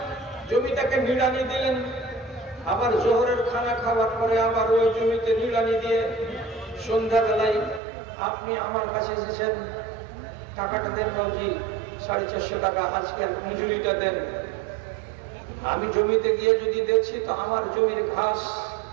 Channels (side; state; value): left; drops out; at 7.8 s